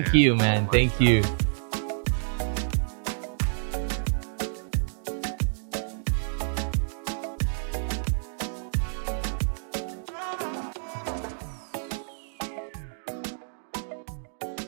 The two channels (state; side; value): silent; left; digital silence